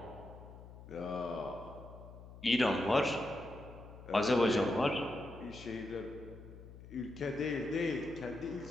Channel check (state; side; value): noise; left; hum, 16 dB below the sound